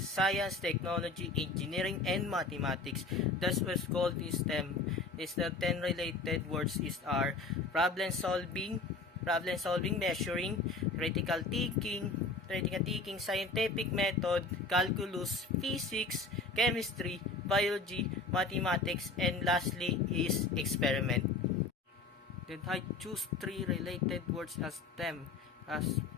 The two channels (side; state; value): right; quieter; 3.6 dB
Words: Technology, Engineering, and Mathematics. That's what's called is STEM. Is the 10 related words is are problem solving, measuring, critical thinking, scientific method, calculus, physics, chemistry, biology, mathematics, and lastly is experiment. Then I choose three related words as STEM, as